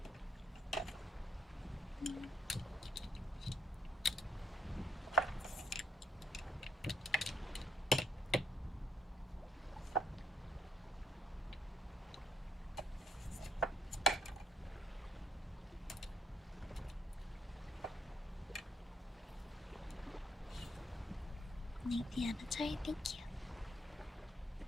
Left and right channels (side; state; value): both; normal; correlation 0.70